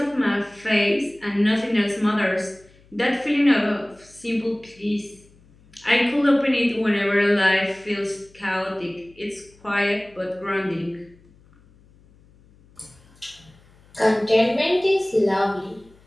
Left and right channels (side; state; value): left; noise; hum, 28 dB below the sound